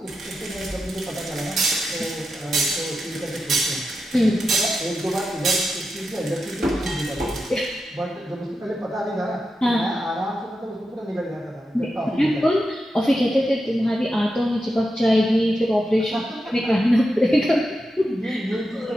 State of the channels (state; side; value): normal; both; correlation 0.88